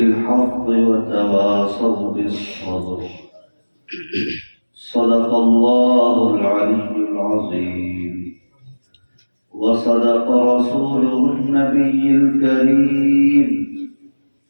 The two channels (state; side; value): inverted; both; correlation -1.00